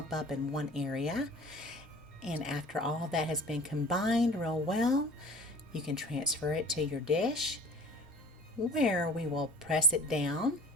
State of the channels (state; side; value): normal; both; correlation 0.44